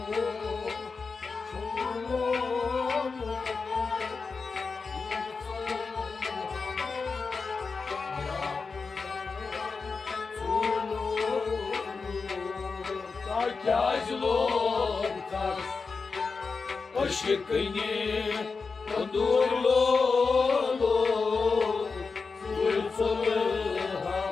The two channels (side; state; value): right; quieter; 4.6 dB